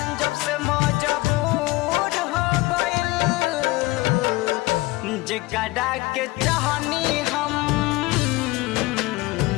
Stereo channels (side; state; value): right; quieter; 20.5 dB